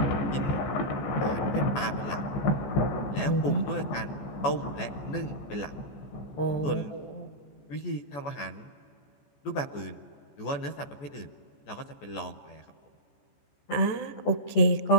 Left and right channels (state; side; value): late; right; 14 ms